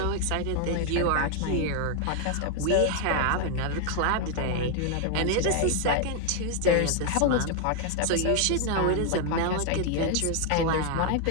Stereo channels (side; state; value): both; different; correlation 0.00